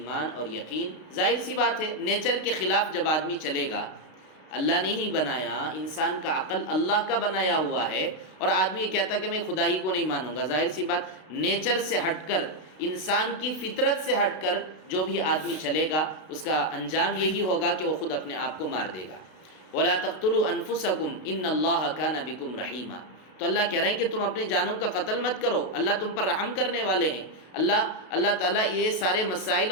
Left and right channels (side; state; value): right; late; 32 ms